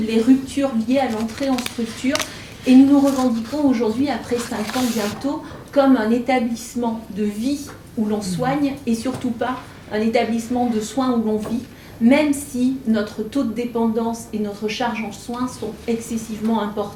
les ruptures liées à l'entrée en structure. Et nous nous revendiquons aujourd'hui, après 5 ans bientôt, comme un établissement de vie où l'on soigne et surtout pas un établissement de soins où l'on vit, même si notre taux de dépendance et notre charge en soins sont excessivement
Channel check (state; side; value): identical; both; correlation 1.00